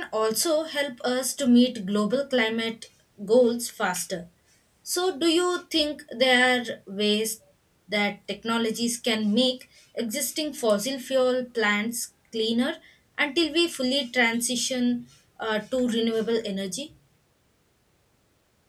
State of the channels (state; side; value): identical; both; correlation 1.00